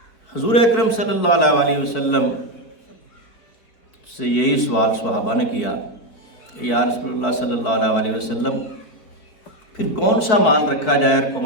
حضور اکرم صلی اللہ علیہ وسلم سے یہی سوال صحابہ نے کیا کہ یا رسول اللہ صلی اللہ علیہ وسلم پھر کون سا مال رکھا جائے اور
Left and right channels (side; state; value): right; late; 4.6 ms